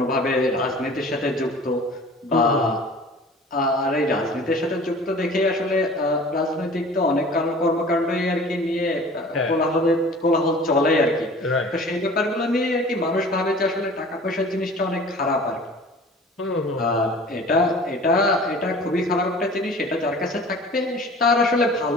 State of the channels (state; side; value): normal; both; correlation 0.44